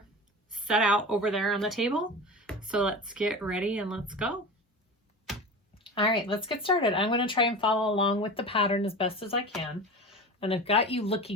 set out over there on the table. So let's get ready and let's go. All right, let's get started. I'm going to try and follow along with the pattern as best as I can. And I've got you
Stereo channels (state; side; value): normal; both; correlation 0.30